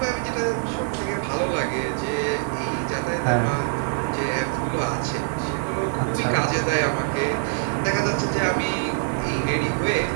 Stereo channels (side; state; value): left; silent; digital silence